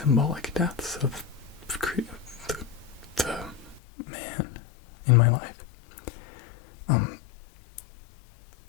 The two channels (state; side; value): drops out; right; at 3.8 s